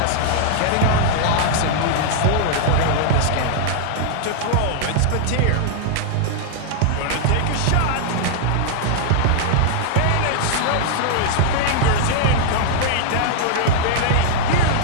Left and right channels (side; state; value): both; different; correlation -0.01